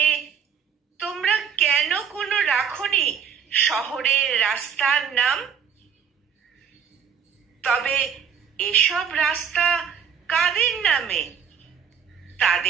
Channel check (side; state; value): left; quieter; 7.2 dB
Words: তোমরা কেন কোনো রাখনি শহরের রাস্তার নাম? তবে এসব রাস্তা কাদের নামে,